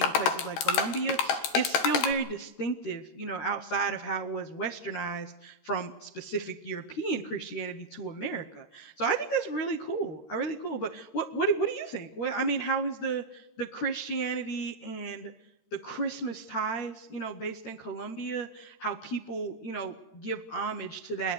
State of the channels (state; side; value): late; right; 13 ms